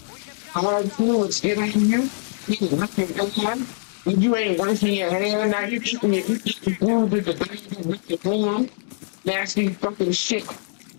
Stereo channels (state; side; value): silent; right; digital silence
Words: hard fluids get on you. You can lick your hand. You ain't washing your hand. Now you keeping your food with the dog with your hand. Nasty fucking shit.